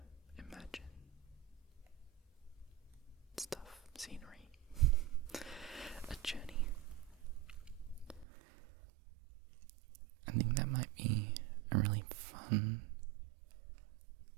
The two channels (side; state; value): left; drops out; at 8.2 s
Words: imagine stuff, scenery, a journey. I think that might be a really fun